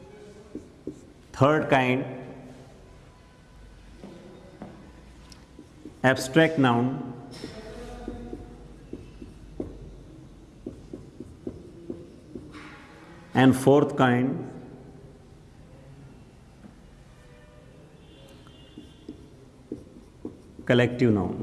Third kind abstract noun, and fourth kind collective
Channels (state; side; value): identical; both; correlation 1.00